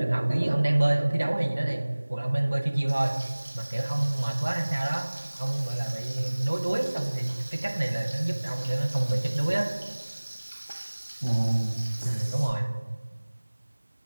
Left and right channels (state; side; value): inverted; both; correlation -1.00